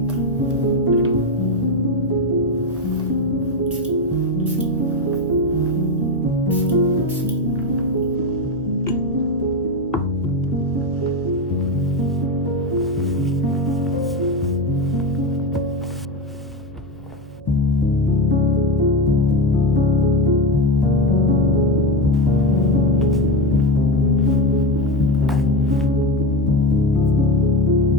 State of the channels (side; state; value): both; normal; correlation 0.15